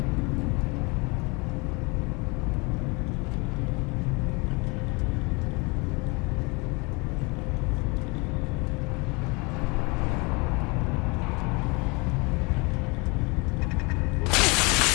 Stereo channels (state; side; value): quieter; right; 28.1 dB